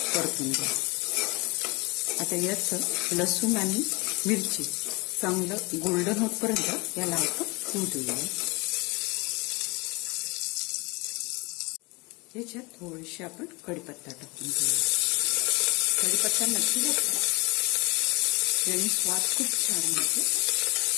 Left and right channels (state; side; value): quieter; right; 26.8 dB